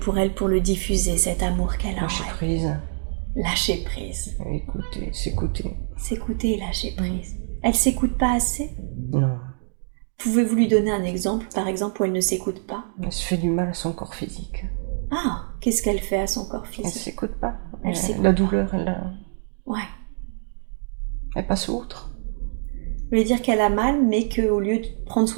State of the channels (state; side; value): silent; left; digital silence